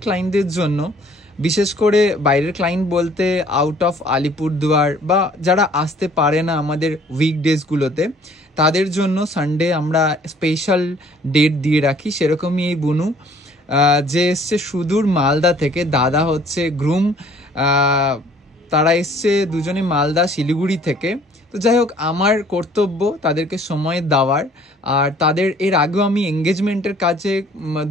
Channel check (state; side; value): normal; both; correlation 0.57